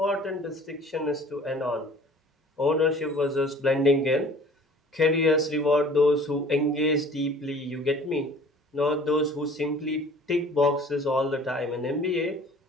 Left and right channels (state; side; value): normal; both; correlation 0.49